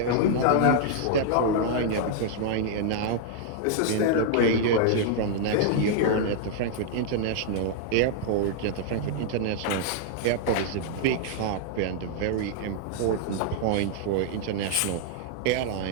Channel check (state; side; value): different; both; correlation -0.01